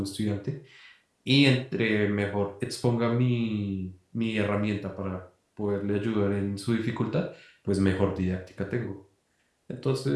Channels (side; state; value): both; identical; correlation 1.00